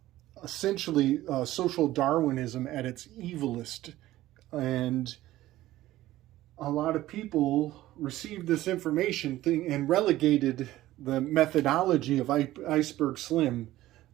essentially social Darwinism at its evilest. And a lot of people received this information and relegated the methodology of Iceberg Slim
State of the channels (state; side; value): quieter; left; 15.5 dB